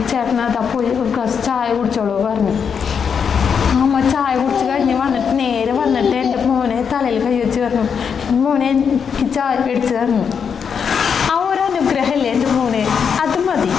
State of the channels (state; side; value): quieter; right; 6.8 dB